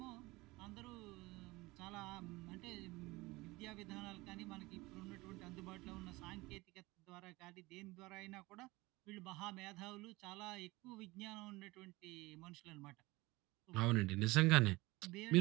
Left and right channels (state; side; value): quieter; left; 21.5 dB